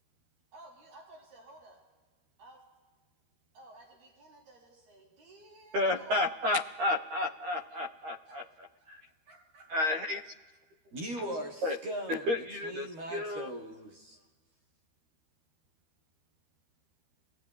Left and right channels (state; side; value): late; left; 13 ms